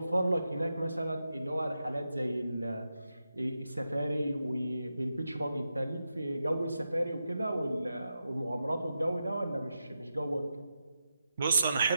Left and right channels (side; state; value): both; inverted; correlation -0.88